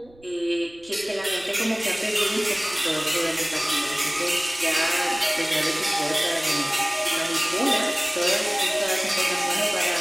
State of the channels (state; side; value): noise; right; rumble, 27 dB below the sound